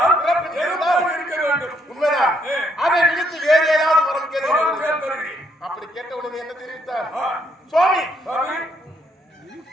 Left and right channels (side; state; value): both; normal; correlation 0.72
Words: உண்மைதான். அதை விடுத்து வேறு ஏதாவது வரம் கேட்க. அப்படி கேட்ட உடனே என்ன தெரிவித்தார்? சுவாமி,